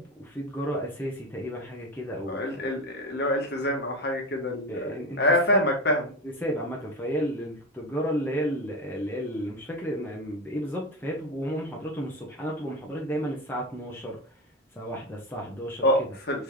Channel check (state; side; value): normal; both; correlation 0.19